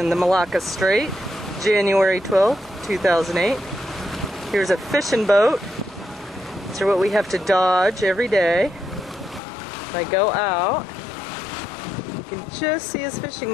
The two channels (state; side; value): drops out; right; at 9.4 s